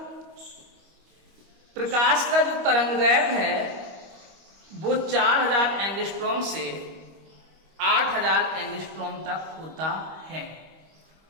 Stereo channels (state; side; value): late; left; 25 ms